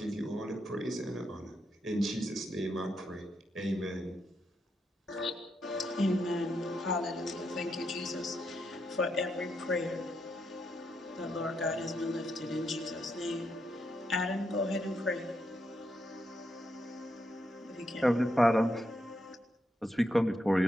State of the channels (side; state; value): both; normal; correlation 0.81